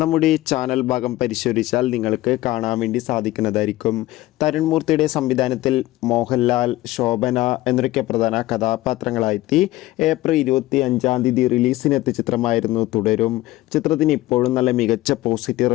നമ്മുടെ ചാനൽ ഭാഗം പരിശോധിച്ചാൽ നിങ്ങൾക്ക് കാണാൻ വേണ്ടി സാധിക്കുന്നതായിരിക്കും. തരുൺമൂർത്തിയുടെ സംവിധാനത്തിൽ മോഹൻലാൽ, ശോഭന എന്നൊക്കെ പ്രധാന കഥാപാത്രങ്ങളായെത്തി ഏപ്രിൽ 25-ാം തീയതി റിലീസിനെത്തിയ ചിത്രമായിരുന്നു തുടരും. ചിത്രത്തിന് ഇപ്പോഴും നല്ല മികച്ച പോസിറ്റീവ്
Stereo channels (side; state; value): right; quieter; 17.0 dB